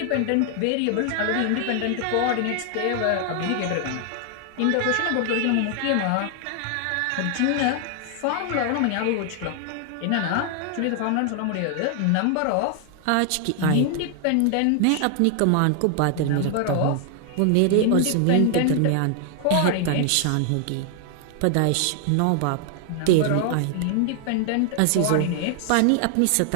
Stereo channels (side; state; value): both; different; correlation 0.00